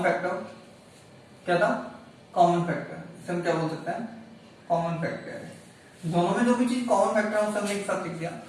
factor क्या था? Common factor. इसे हम क्या बोल सकते हैं? Common factor. दोनों में जो भी चीज कॉमन फैक्टर है उसे हमने एक साथ लिख दिया.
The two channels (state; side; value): identical; both; correlation 1.00